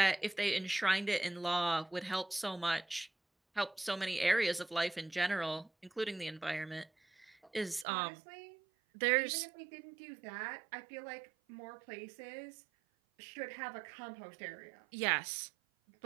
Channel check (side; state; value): left; drops out; at 7.9 s